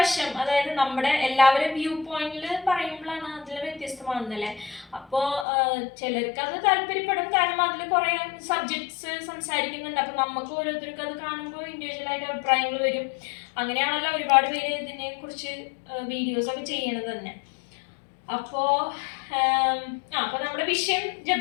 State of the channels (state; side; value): drops out; right; at 5.5 s